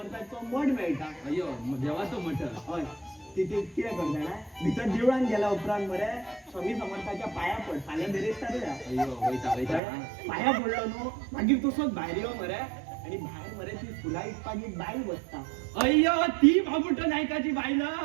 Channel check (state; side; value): drops out; left; at 9.8 s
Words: मठ मेळटा. अय्यो देवाचो मठ. हय तिथे कितें कर जाणा भितर देवळान गेल्या उपरांत मरे स्वामी समर्थाच्या पांया पड फाल्यां बेरेस्तार या. अय्यो वयता वयता. पांया पडलो न्हू मागीर तसोच भायर यो मरे आणि भायर मरे ती फुलां विकपाक एक बायल बसता. अय्यो ती बाबूटो नायकाची बायल?